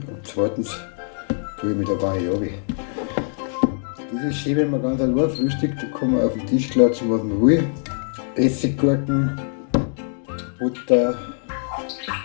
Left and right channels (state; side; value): silent; right; digital silence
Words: und zweitens tue ich mich da gar nicht runter. Das ist schön, wenn man ganz allein frühstückt, da kann man auf den Tisch klatschen, was man will. Essiggurken, Butter,